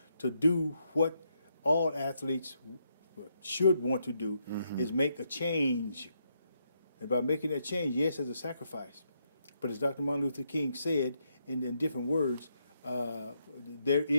to do what all athletes should want to do, is make a change. And by making that change, yes, it's a sacrifice. But as Dr. Martin Luther King said in different words, there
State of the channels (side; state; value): both; inverted; correlation -0.78